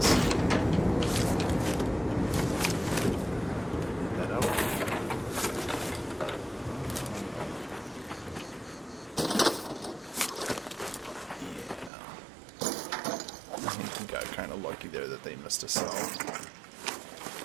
They missed a cell.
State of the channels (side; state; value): left; drops out; at 11.9 s